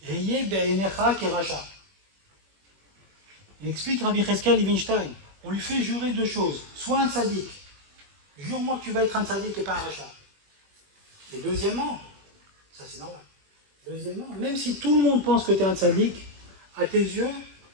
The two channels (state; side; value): late; left; 21 ms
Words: Heye Be'enecha Kerasha. Il explique Rabbi Cheskel Levinstein, on lui fait jurer 2 choses. Soit un tzaddik, jure-moi que tu vas être un tzaddik et pas un rachat. Et deuxièmement, ça c'est normal. Deuxièmement, même si tout le monde pense que tu es un tzaddik, à tes yeux,